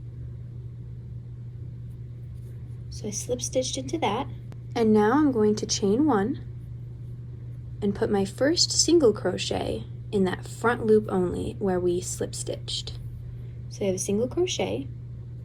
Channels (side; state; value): both; identical; correlation 1.00